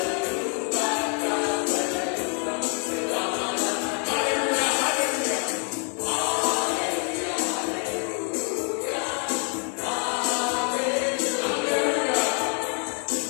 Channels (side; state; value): right; quieter; 39.7 dB